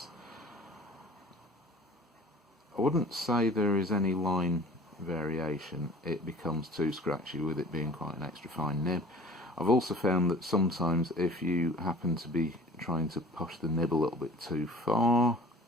I wouldn't say there is any line variation. It becomes too scratchy with it being quite an extra fine nib. I've also found that sometimes if you happen to be trying to push the nib a little bit too far,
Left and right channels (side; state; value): both; normal; correlation 0.46